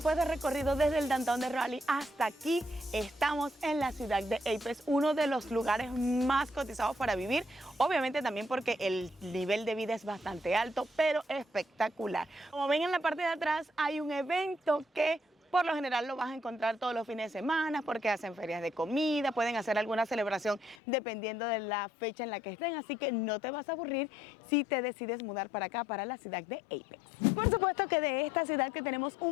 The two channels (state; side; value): drops out; right; at 20.8 s